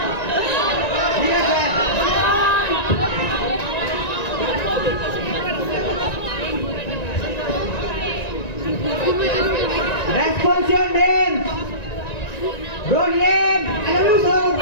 ঠিক আছে Response your name. Your name.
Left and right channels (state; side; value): late; right; 1.9 ms